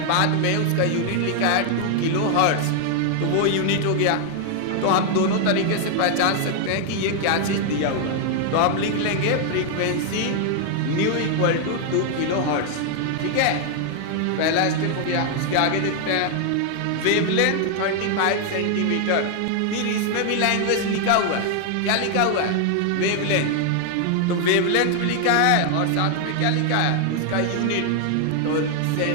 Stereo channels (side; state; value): both; different; correlation 0.00